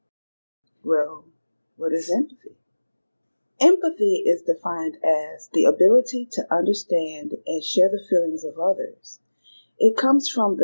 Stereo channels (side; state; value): both; inverted; correlation -1.00